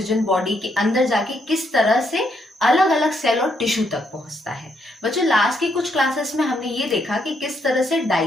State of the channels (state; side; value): normal; both; correlation 0.76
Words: बॉडी के अंदर जाके किस तरह से अलग अलग सेल और टिश्यू तक पहुंचता है। बच्चों, लास्ट की कुछ क्लासेस में हमने ये देखा कि किस तरह से